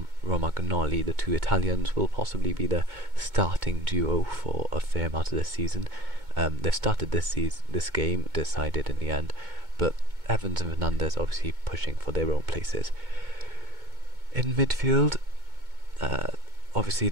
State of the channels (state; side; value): late; left; 2.2 ms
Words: Romagnoli, the 2 Italians, will possibly be the starting duo for a fair amount of this season. They've started this game, decided in the end, but Evans and Fernandez obviously pushing for their own places. In midfield, obviously